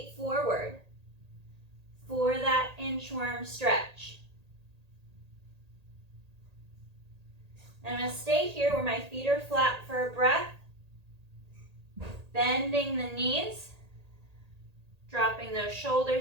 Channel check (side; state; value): left; late; 1.8 ms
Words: forward for that inchworm stretch. And I'm going to stay here where my feet are flat for a breath, bending the knees, Dropping those